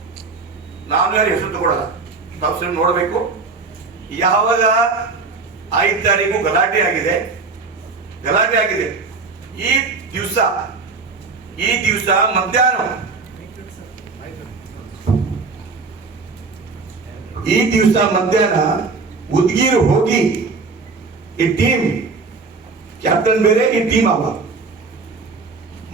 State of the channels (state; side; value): quieter; left; 4.3 dB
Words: ನಾನು ಯಾರು ಹೆಸರು ತಗೊಳ್ಳಲ್ಲ, ತಾವು ನೋಡಬೇಕು. ಯಾವಾಗ 5 ತಾರೀಕು ಗಲಾಟೆ ಆಗಿದೆ, ಈ ದಿವಸ ಮಧ್ಯಾಹ್ನ ಉದ್ಗೀರ್ ಹೋಗಿ ಈ ಟೀಮ್ ಕ್ಯಾಪ್ಟನ್ ಬೇರೆ, ಈ ಟೀಮ್ ಅವ